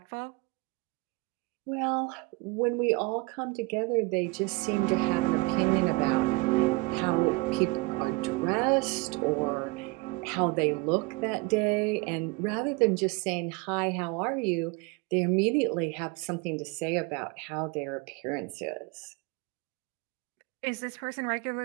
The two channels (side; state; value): left; quieter; 25.5 dB